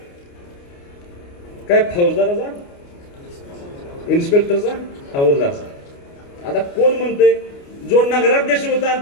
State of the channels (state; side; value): late; right; 29 ms